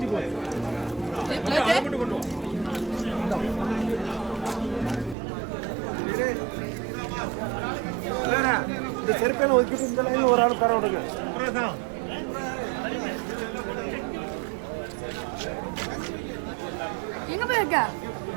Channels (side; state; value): left; drops out; at 5.2 s